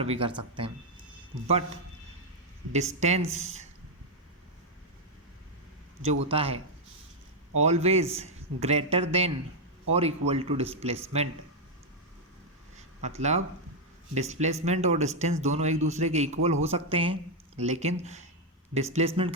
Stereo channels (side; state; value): both; normal; correlation 0.01